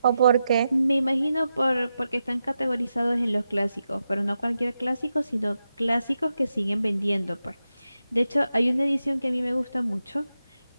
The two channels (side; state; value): both; inverted; correlation -0.89